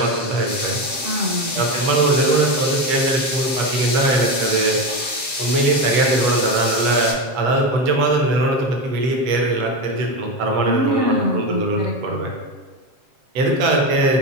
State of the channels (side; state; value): left; late; 7.5 ms